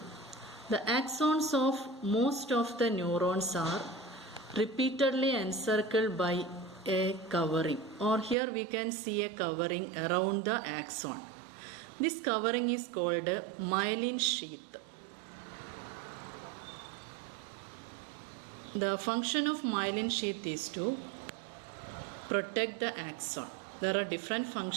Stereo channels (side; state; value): left; drops out; at 8.3 s